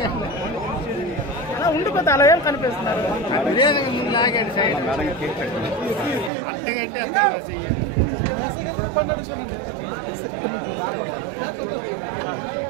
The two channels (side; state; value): left; drops out; at 6.3 s